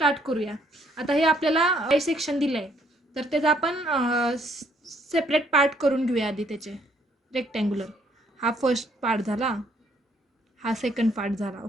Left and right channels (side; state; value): both; normal; correlation 0.67